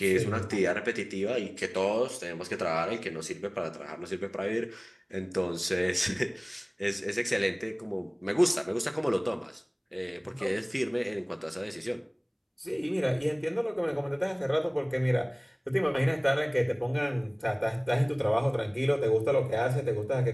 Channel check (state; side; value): identical; both; correlation 1.00